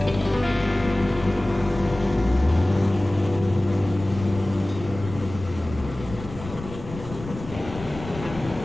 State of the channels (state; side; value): noise; left; rumble, 13 dB below the sound